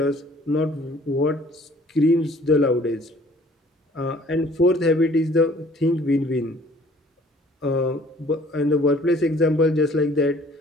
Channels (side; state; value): both; normal; correlation 0.56